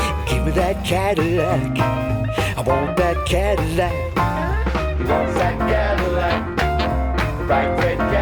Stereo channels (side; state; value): both; identical; correlation 1.00